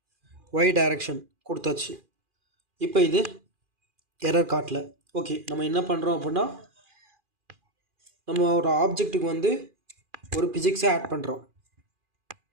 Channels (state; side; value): late; left; 2.4 ms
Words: ஒய் டைரக்ஷன் கொடுத்தாச்சு. இப்போ இது எரர் காட்டல. ஓகே, நம்ம என்ன பண்ணுறோம் அப்படின்னா நம்ம ஒரு ஆப்ஜெக்ட்டுக்கு வந்து ஒரு பிசிக்ஸை ஆட் பண்ணுறோம்.